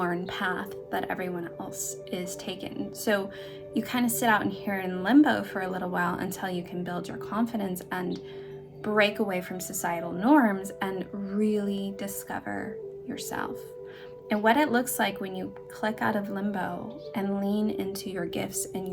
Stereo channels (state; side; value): identical; both; correlation 1.00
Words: path that everyone else is taking. So you kind of sit out here in limbo for a little while until you can build your confidence and break away from societal norms and really discover yourself. And what it looks like when you click out of limbo and lean into your gifts and